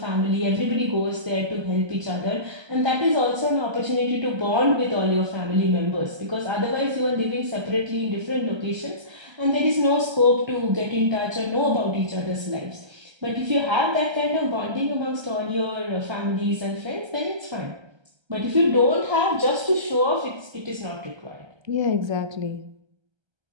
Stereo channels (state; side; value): late; left; 1.3 ms